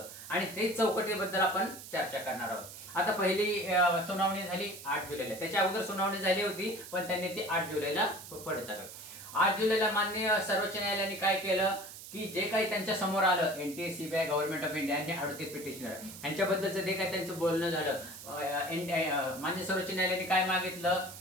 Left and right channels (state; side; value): noise; right; hiss, 13 dB below the sound